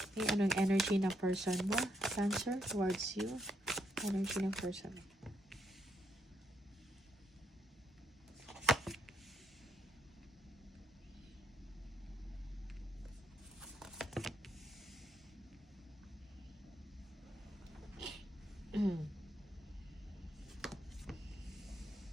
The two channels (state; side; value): normal; both; correlation 0.77